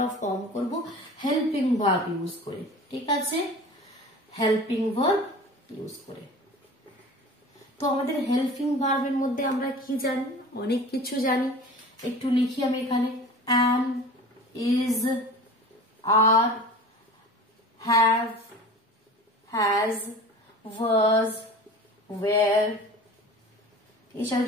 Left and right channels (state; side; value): normal; both; correlation 0.38